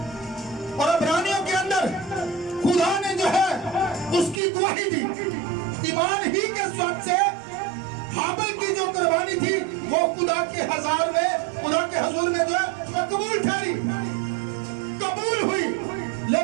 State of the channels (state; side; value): drops out; left; at 4.4 s